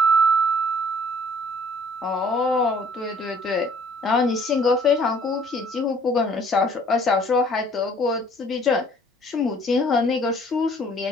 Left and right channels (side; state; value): both; normal; correlation 0.58